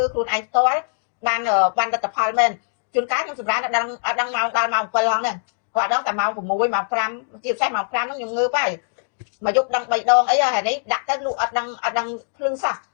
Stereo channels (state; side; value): silent; right; digital silence